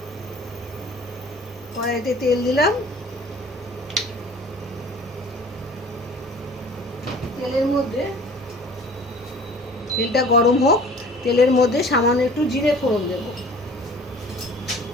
কড়াইতে তেল দিলাম। তেলের মধ্যে তেলটা গরম হোক। তেলের মধ্যে সামান্য একটু জিরে ফোড়ন দেব।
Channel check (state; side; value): normal; both; correlation 0.48